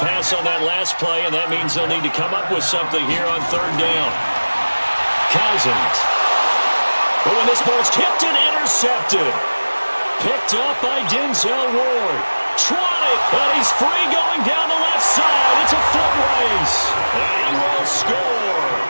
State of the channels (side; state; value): both; inverted; correlation -1.00